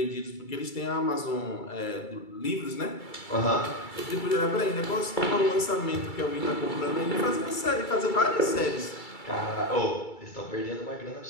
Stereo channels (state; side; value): late; right; 2.3 ms